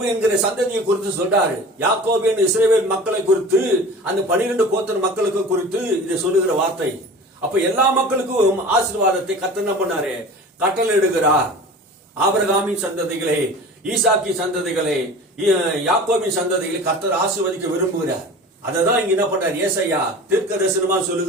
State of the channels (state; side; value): normal; both; correlation 0.38